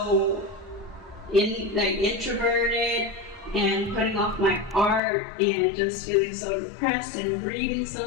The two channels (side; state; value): right; drops out; at 5.0 s